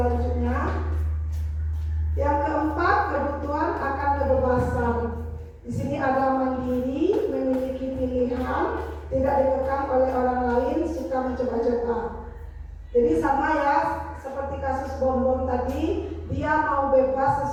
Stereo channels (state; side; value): identical; both; correlation 1.00